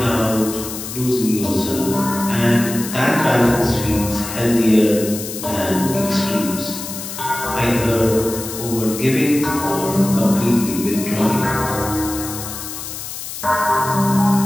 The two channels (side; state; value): left; noise; hiss, 9 dB below the sound